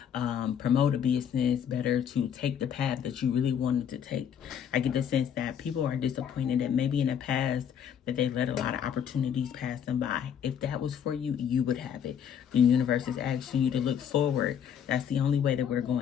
promote a business better, to take the path that you really wanted to take? I get the sense that people are disappointed that maybe in the past that they let a lot of opportunities pass them by. If that was for you, you would have it. The universe is asking you to look forward. That's the only way that we're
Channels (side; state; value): right; quieter; 8.5 dB